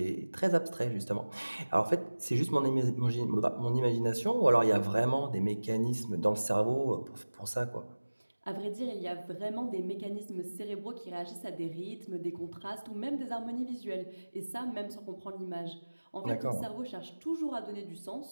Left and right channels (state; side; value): inverted; both; correlation -1.00